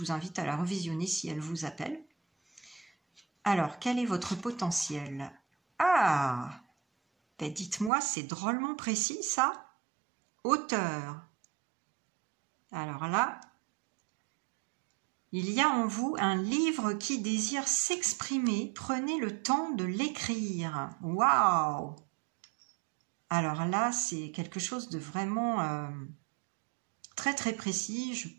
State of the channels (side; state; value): left; drops out; at 7.9 s